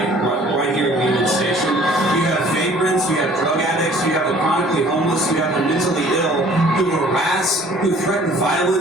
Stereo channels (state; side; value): normal; both; correlation 0.53